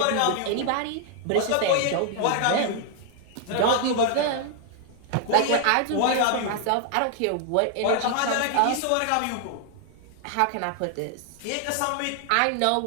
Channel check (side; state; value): both; different; correlation 0.00